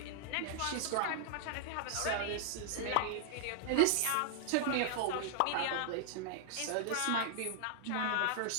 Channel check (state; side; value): different; both; correlation 0.00